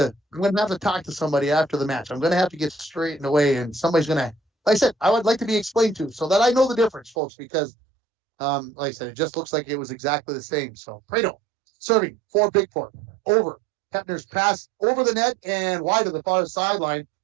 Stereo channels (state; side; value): drops out; left; at 7.2 s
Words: talk to somebody after the match. I'm going to have to get straightened away, and somebody's going to, like I said, I would like to be explained to, so that I know the difference, folks, because like I said, it just looks like it was exactly the same. So Prado serving for Bigfork. Over. Hepner's pass over the net and wide to the far sideline.